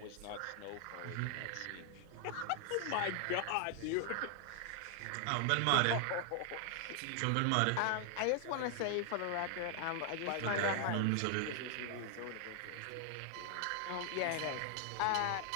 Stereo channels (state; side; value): different; both; correlation 0.00